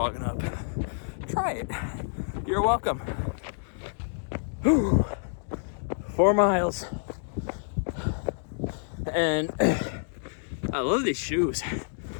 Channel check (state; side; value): silent; right; digital silence